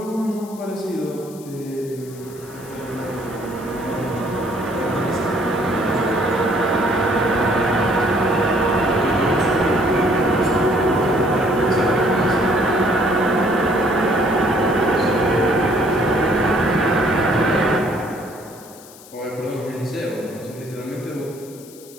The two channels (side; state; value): left; noise; hiss, 21 dB below the sound